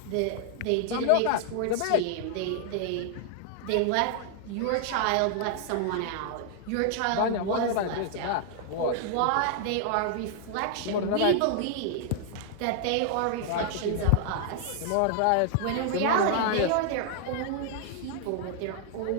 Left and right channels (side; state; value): both; different; correlation 0.00